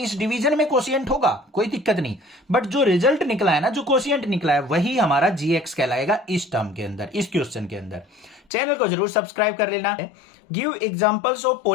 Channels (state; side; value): drops out; right; at 8.4 s